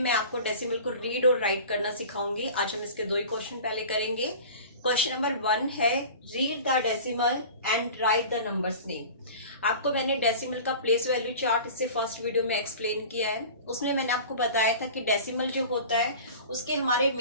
आपको डेसिमल को रीड और राइट करना सिखाऊंगी। आज हम इसके दो ही क्वेश्चन पहले करेंगे। क्वेश्चन नंबर 1 है read the decimal and right the numbers name. आपको मैंने डेसिमल का प्लेस वैल्यू चार्ट इससे फर्स्ट वीडियो में एक्सप्लेन किया है। उसमें मैंने आपको बताया था कि डेसिमल जो होता है उसके हमारे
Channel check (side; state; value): both; inverted; correlation -0.39